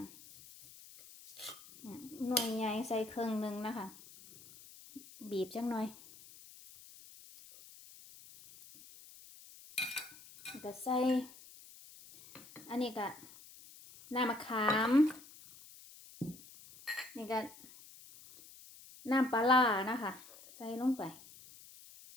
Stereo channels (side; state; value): left; noise; hiss, 20 dB below the sound